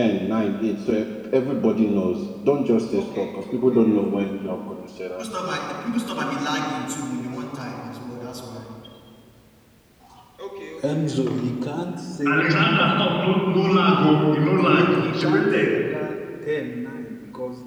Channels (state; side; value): identical; both; correlation 1.00